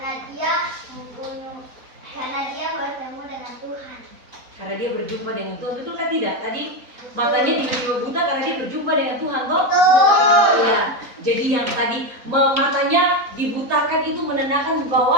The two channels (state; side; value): late; left; 4.0 ms